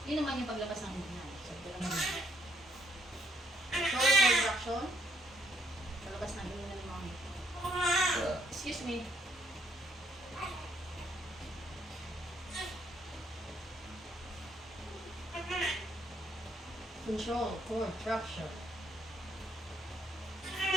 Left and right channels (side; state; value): both; normal; correlation 0.71